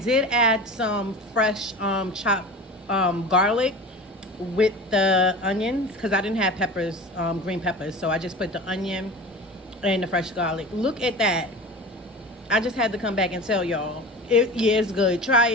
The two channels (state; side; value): normal; both; correlation 0.34